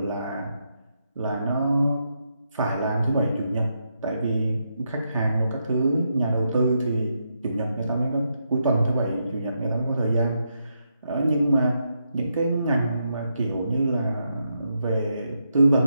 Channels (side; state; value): both; inverted; correlation -0.82